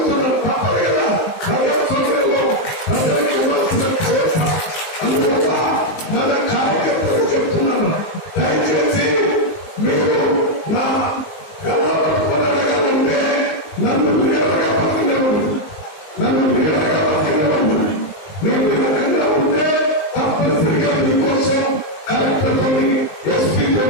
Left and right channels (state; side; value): late; right; 19 ms